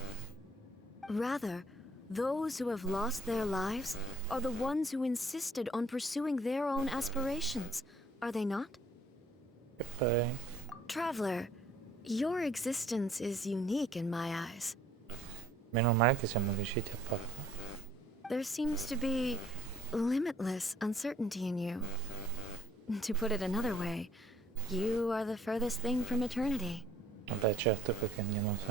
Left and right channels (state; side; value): normal; both; correlation 0.60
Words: Rather, those who have lost their lives are the ones who insisted on pursuing their own aspirations, are they not? E poi Traveler, your existence is unique in my eyes. meno male che siamo riusciti a parlare. There seems to be limitless uncertainty in you. To put it another way, you are the furthest thing from eternity. Vabbè, certo, perché andiamo